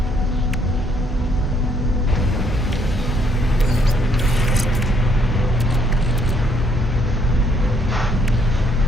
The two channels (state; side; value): normal; both; correlation 0.68